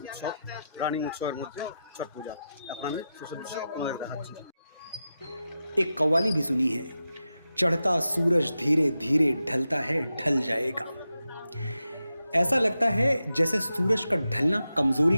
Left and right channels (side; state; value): both; inverted; correlation -0.90